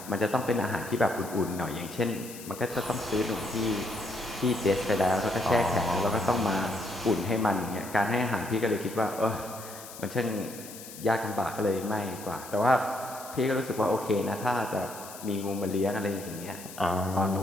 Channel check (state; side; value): noise; left; hiss, 14 dB below the sound